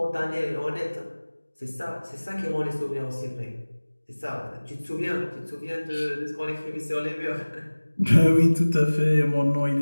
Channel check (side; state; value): both; inverted; correlation -1.00